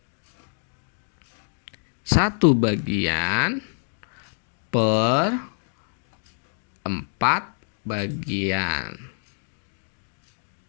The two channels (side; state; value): right; silent; 61 dB below the other